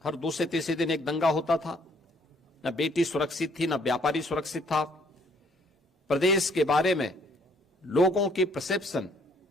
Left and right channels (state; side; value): normal; both; correlation 0.64